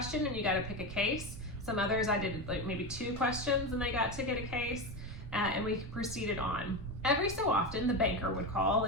and you got to pick a case. Some others I did like maybe 2 questions and they got to get a case, and we proceeded on. Every so often the banker would call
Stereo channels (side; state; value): right; noise; rumble, 11 dB below the sound